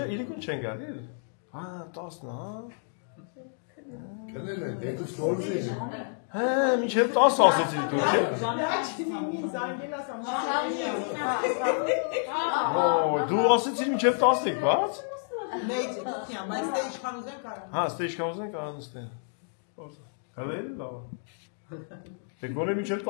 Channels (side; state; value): right; silent; digital silence